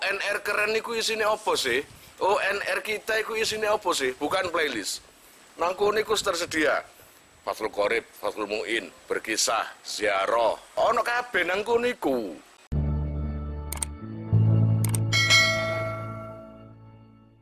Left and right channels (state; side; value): identical; both; correlation 1.00